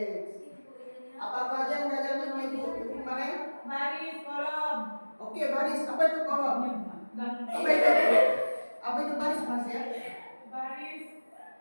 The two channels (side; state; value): both; inverted; correlation -1.00